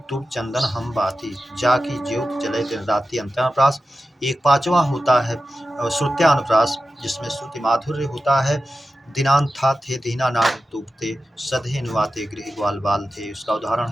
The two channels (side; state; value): both; normal; correlation 0.93